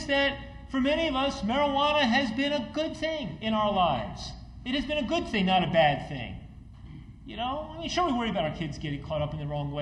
that for many of us, marijuana has been a good thing in our lives. It has been a good thing, not a bad thing. Sure, we worry about our kids getting caught up in the wrong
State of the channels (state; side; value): identical; both; correlation 1.00